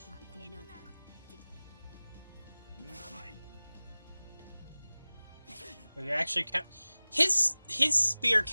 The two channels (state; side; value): inverted; both; correlation -0.99